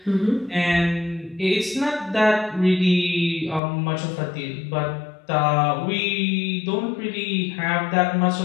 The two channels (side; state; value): right; drops out; at 3.6 s